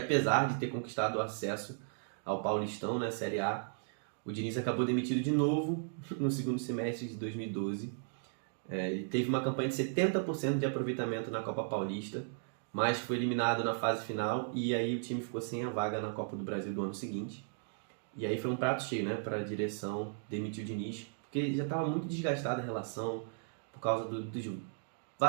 de ter conquistado o acesso ao Paulistão, na Série A, o Diniz acabou demitido de novo no 2º semestre de 2012. Ele teve uma campanha de 70% de aproveitamento na Copa Paulista, mas foi eliminado na fase final e aí o time ficou sem a vaga na Copa do Brasil do ano seguinte. E aí foi um prato cheio, né, para a direção demitir o Diniz, porque já estava muito desgastada a relação por causa dos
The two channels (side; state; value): left; silent; digital silence